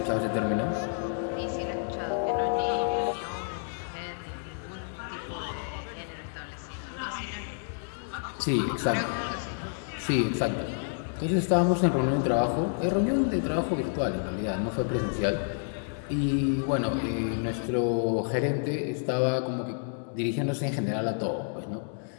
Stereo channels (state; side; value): silent; right; digital silence